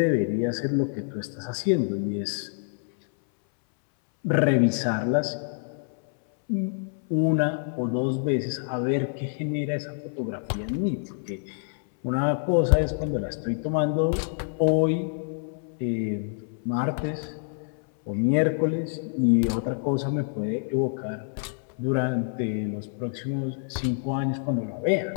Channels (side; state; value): right; silent; 60 dB below the other